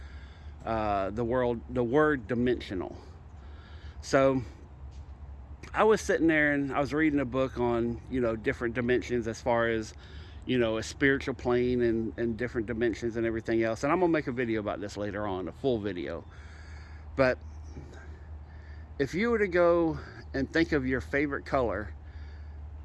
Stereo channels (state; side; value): identical; both; correlation 1.00